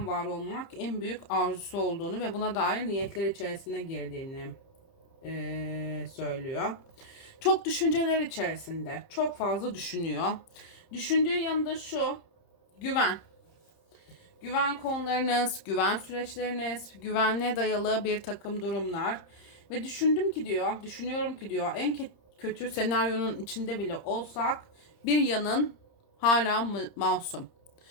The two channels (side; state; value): right; late; 30 ms